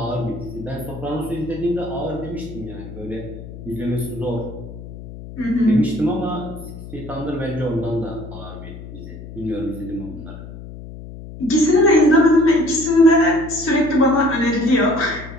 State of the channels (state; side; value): noise; left; hum, 13 dB below the sound